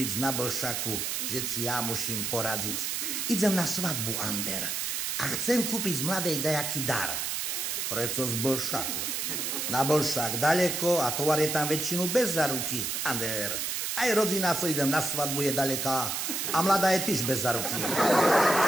na Blšaku, že si ja musím poradiť? Idem na svadbu, Ander. A chcem kúpiť z mladej dajaký dar. Preco z Blšaku? Na Blšak daleko a tovar je tam väčšinu bez záruky. Ander, aj rodina, co idem na svadbu, je daleká a mladá je tiež bez záruky.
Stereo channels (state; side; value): noise; right; hiss, 1 dB below the sound